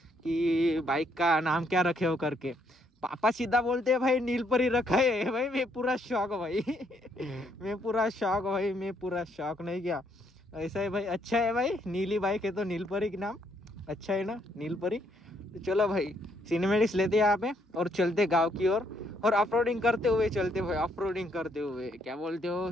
बाइक का नाम क्या रखे हो करके, पापा सीधा बोलते हैं भाई नीलपरी रखा है भाई. मैं पूरा शौक भाई मैं पूरा शौक भाई, मैं पूरा शौक नहीं क्या. ऐसा है भाई, अच्छा है भाई. नीली बाइक है तो नीलपरी के नाम अच्छा है ना, नीलपरी. तो चलो भाई सिनेमेटिक्स लेते हैं यहाँ पे और चलते गांव की ओर, और ऑफरोडिंग करते हुए चलते भाई, ऑफरोडिंग करते हुए. क्या बोलते हो,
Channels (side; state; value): both; normal; correlation 0.71